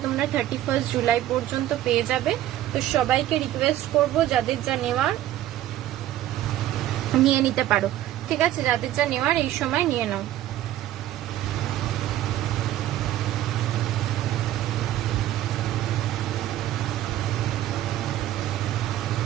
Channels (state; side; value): quieter; left; 13.4 dB